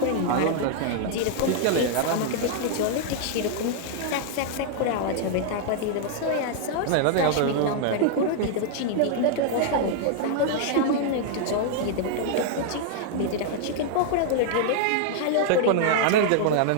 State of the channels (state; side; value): different; both; correlation -0.01